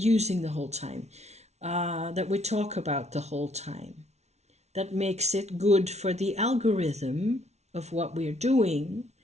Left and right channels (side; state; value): left; late; 0.32 ms